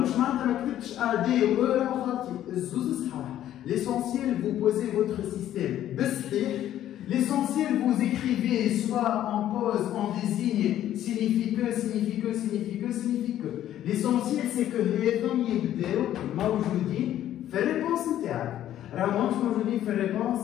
je ne A, D ou E, l'essentiel, vous posez votre système. L'essentiel, vous écrivez soit en pause, en désigne, signifie que, signifie que, signifie que, signifie que. L'essentiel, c'est que les hommes y moi je vous dis, fais réponse interne. Alors, moi je vous dis, fais réponse,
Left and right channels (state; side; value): quieter; right; 12.0 dB